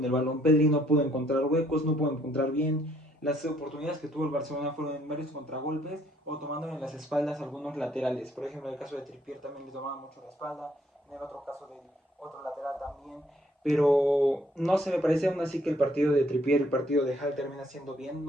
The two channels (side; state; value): both; normal; correlation 0.66